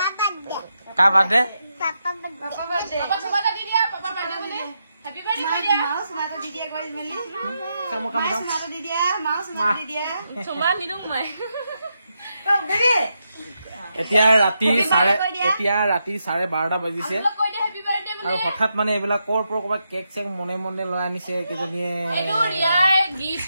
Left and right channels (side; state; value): both; inverted; correlation -0.84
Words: কাৰ বাৰ্থডে পাপা বাৰ্থডে পাপা সবাই দি দিয়া পাপা বাৰ্থডে বুলি হ্যাপি বাৰ্থডে দিয়া মাউস মাটো দি দিয়া কই মেলি মাউস মাটো দি দিয়া মাউস মাটো দি দিয়া সবাই নিদুম মই বেবি এতিয়া ৰাতি 12:30 বাজিছে আৰু হঠাৎ মানে এইবিলাক কৰ পৰা ক'ৰবাত কেক চেক মনে মনে লৈ আনিছে কেইজনীয়ে